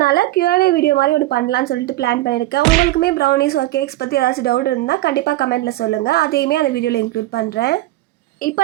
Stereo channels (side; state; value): left; quieter; 16.8 dB